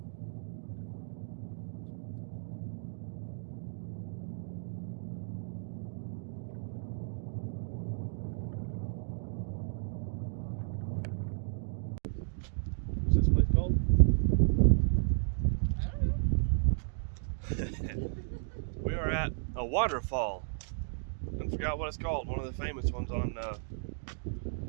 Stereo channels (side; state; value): left; silent; digital silence